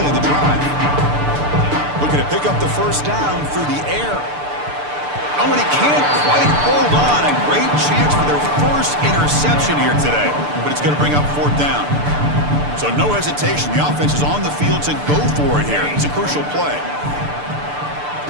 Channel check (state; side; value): late; left; 6.8 ms